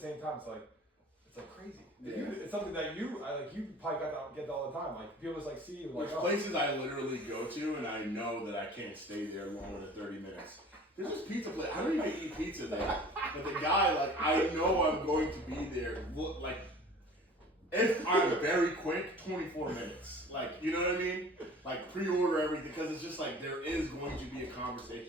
time it's crazy. Yeah. It's something that you probably get that all the time. People just see you There's places I literally go to and I know that I can't stay there longer than 30 minutes. There's this pizza place. I don't even eat pizza there. But the guy, I know I'm going to be there. If I'm very quick, 24 minutes. You know what I mean? Pre-order everything because it's just there is going to be a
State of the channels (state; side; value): normal; both; correlation 0.45